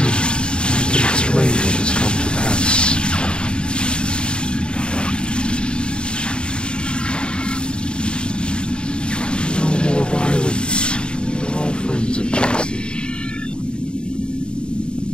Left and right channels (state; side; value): late; right; 0.051 ms